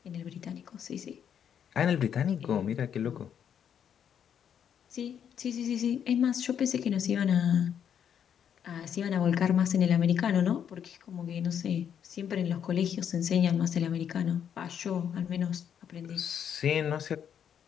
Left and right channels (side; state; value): right; quieter; 8.6 dB